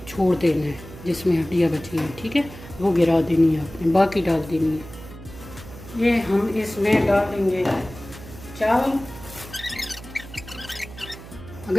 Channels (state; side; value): noise; right; hum, 16 dB below the sound